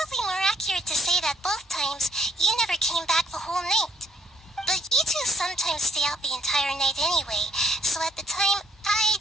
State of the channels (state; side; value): normal; both; correlation 0.69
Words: more accurate to say that both times you never came back the whole night. But you two sometimes stay out the entire night anyway, so at the time, I